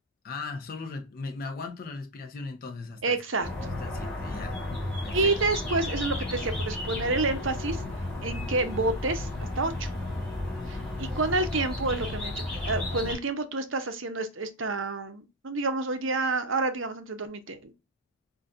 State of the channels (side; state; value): both; normal; correlation 0.04